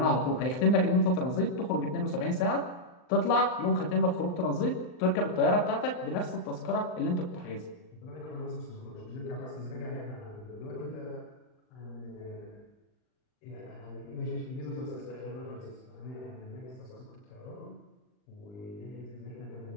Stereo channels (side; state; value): right; late; 39 ms